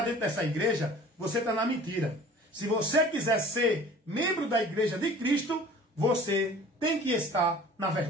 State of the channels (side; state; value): both; normal; correlation 0.46